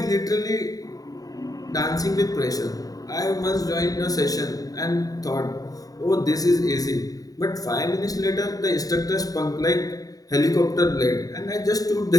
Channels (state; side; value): late; right; 0.18 ms